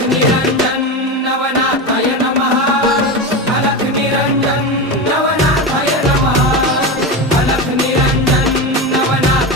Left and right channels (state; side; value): normal; both; correlation 0.20